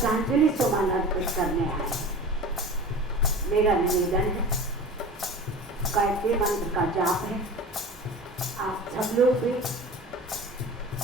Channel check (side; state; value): both; normal; correlation 0.36